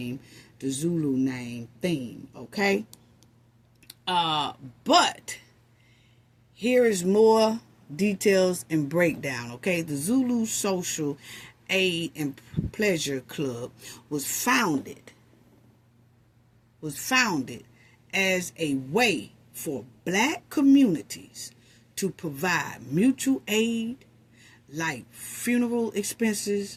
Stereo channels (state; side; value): identical; both; correlation 1.00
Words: the Zulu name theme, okay? But here is more details and breakdown, okay? The Zulu Social Aid and Pleasure Club was founded as a way for black communities to provide mutual aid, like funeral